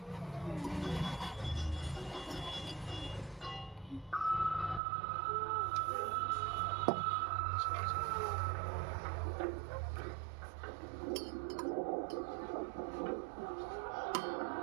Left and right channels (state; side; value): drops out; left; at 4.8 s